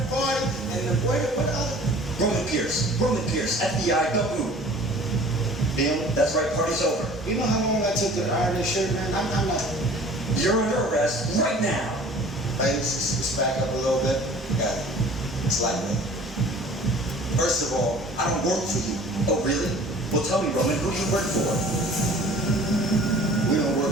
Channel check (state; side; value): normal; both; correlation 0.47